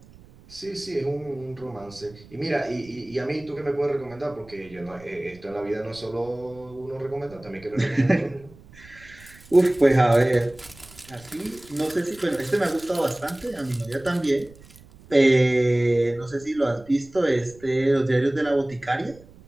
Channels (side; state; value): right; noise; rumble, 23 dB below the sound